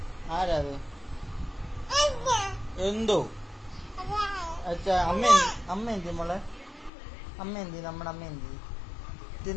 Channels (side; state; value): right; drops out; at 6.9 s